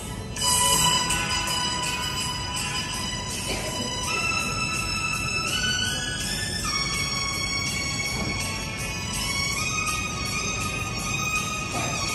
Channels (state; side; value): identical; both; correlation 1.00